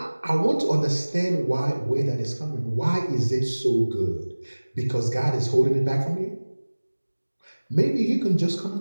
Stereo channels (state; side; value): inverted; both; correlation -1.00